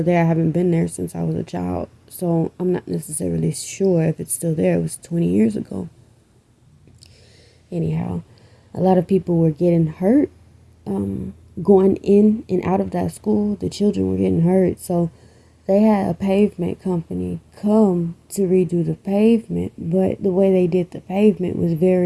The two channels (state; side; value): identical; both; correlation 1.00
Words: there. I haven't been there since I was a child, so I'm not necessarily sure if it's still there. It was 20 years ago. Anyhow, a lot of people were getting hurt, going in and out of that school. The children were getting hurt, so they had a pavement company come to redo the pavement. But the way they did the pavement was